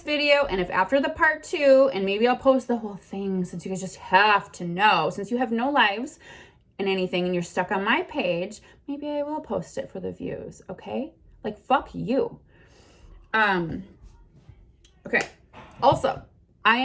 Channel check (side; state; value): both; identical; correlation 1.00